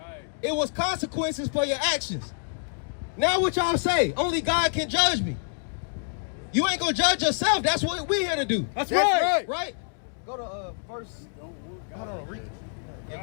It was consequences for your actions. Now what y'all say? Only God can judge me. You ain't gonna judge yourself. That's what we're here to do. That's right. Right? Go to verse. Hold on, read.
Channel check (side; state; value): right; silent; digital silence